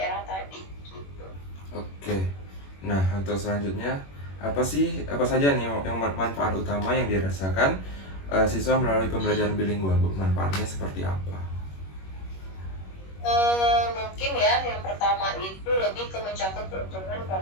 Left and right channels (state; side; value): late; right; 21 ms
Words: tadi gitu. Oke. Nah, untuk selanjutnya, apa saja nih yang manfaat utama yang dirasakan siswa melalui pembelajaran bilingual, Bu? Manfaatnya seperti apa? Mungkin ya yang pertama itu lebih ke mencakup peruntungan